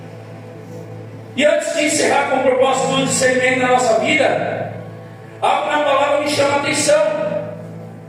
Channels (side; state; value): both; identical; correlation 1.00